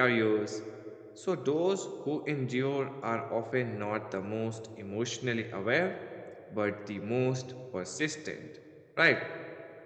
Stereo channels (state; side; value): identical; both; correlation 1.00